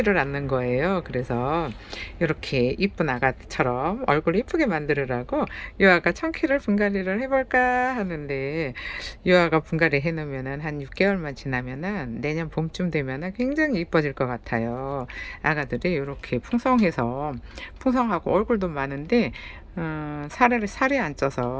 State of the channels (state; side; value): identical; both; correlation 1.00